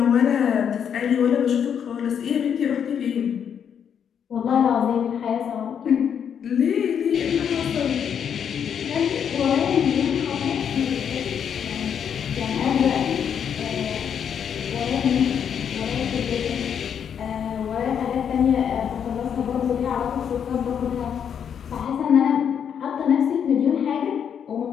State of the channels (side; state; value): right; quieter; 8.0 dB